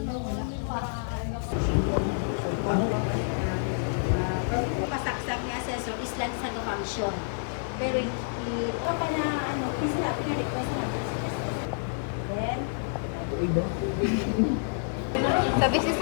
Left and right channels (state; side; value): silent; right; digital silence